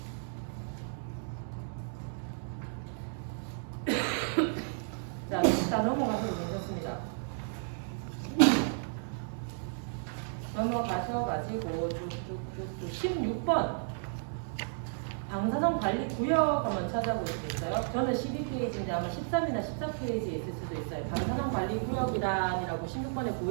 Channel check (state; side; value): silent; left; digital silence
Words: 자, 일단 넘어가셔도 괜찮습니다. 넘어가셔가지고 16번 방사선 관리 구역 한번 찾아볼 수 있어요. 저는 12페이지인데 아마 13이나 14페이지에 있을 수도 있어요. 방사선 관리 구역이란이라고 16번에